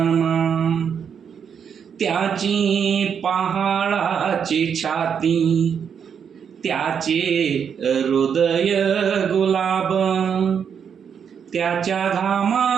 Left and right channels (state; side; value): quieter; left; 7.4 dB